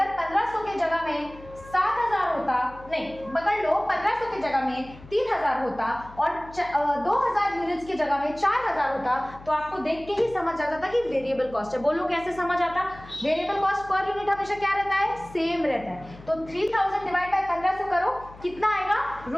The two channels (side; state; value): left; noise; hum, 19 dB below the sound